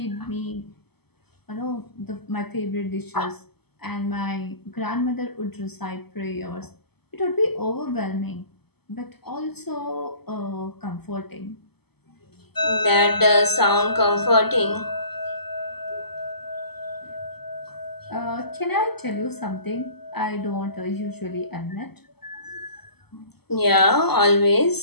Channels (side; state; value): right; late; 0.97 ms